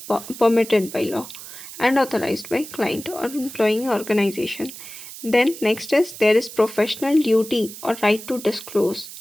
permitted by law and authorised by client और employing organisation. Then next is there is professional duty और right to disclose.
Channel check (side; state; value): right; noise; hiss, 13 dB below the sound